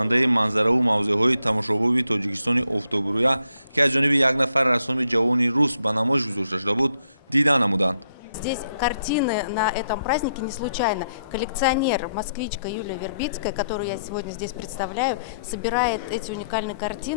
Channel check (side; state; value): both; inverted; correlation -0.76